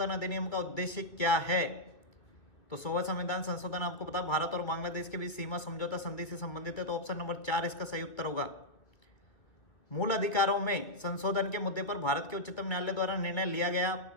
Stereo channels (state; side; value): late; right; 2.0 ms